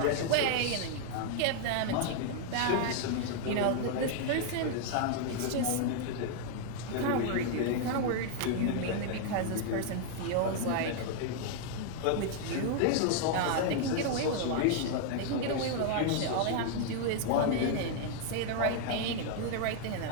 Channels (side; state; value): both; different; correlation 0.00